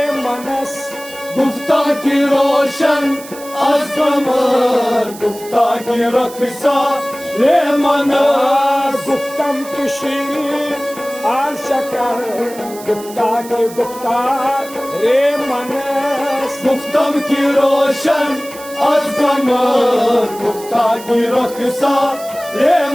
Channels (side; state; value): right; noise; hiss, 17 dB below the sound